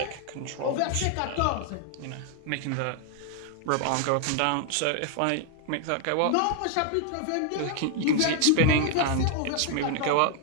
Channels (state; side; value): different; both; correlation 0.00